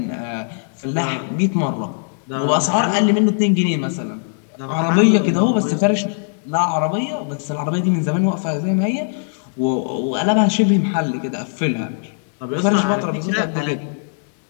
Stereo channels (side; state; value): right; silent; digital silence